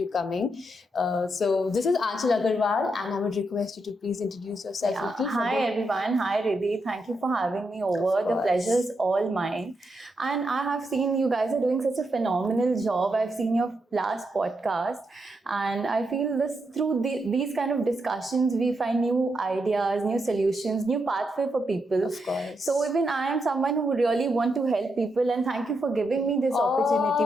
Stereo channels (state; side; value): normal; both; correlation 0.83